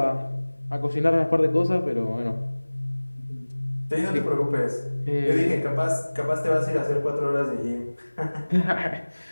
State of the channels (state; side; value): inverted; both; correlation -1.00